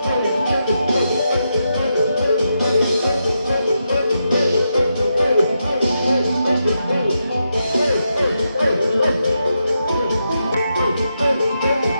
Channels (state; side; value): inverted; both; correlation -0.84